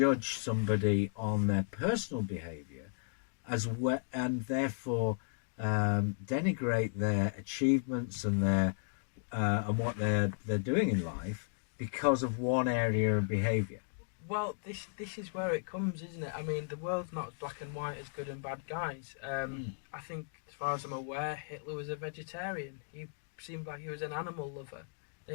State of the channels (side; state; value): right; silent; digital silence